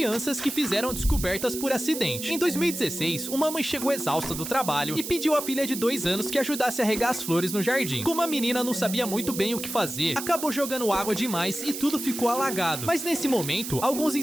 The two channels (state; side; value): noise; right; hiss, 7 dB below the sound